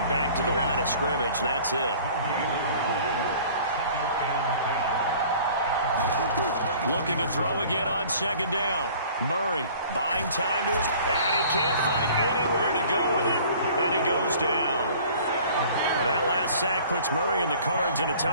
back to the line of scrimmage. That's it. Looking to throw again on 2nd down. Murray buying time to his... And he can't find anywhere to go with it. And he goes down. Now that last sack puts Murray and the Cards in a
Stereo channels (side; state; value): both; inverted; correlation -0.49